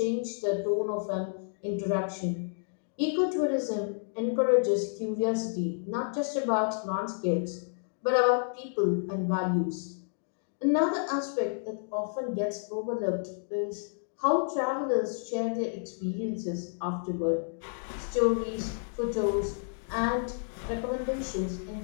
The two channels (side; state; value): right; silent; digital silence